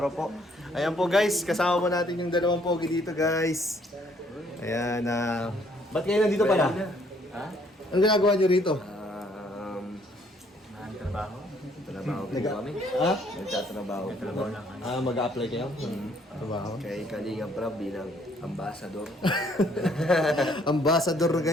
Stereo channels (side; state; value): both; normal; correlation 0.64